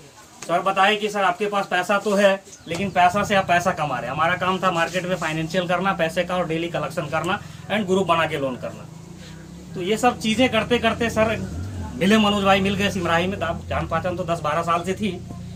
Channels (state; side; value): identical; both; correlation 1.00